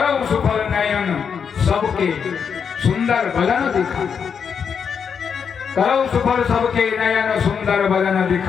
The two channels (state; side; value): quieter; right; 6.7 dB